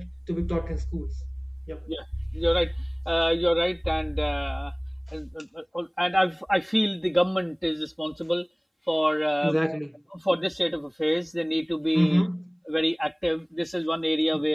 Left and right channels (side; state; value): both; identical; correlation 1.00